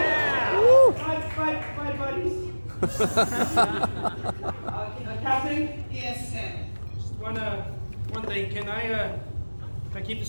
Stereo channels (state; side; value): inverted; both; correlation -1.00